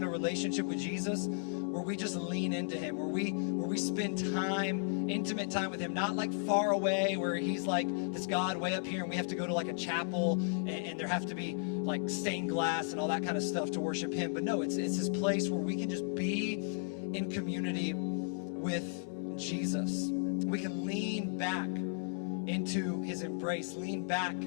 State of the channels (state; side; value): silent; right; digital silence